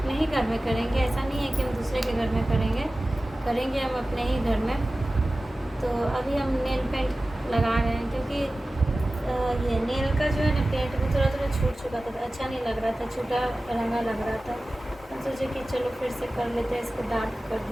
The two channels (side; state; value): both; normal; correlation 0.96